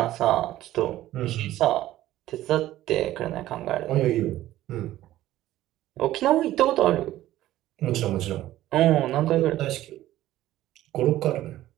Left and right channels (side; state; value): left; quieter; 14.5 dB